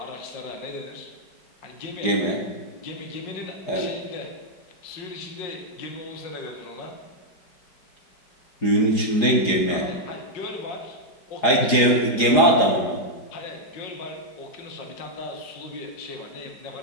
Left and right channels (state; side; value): late; right; 4.9 ms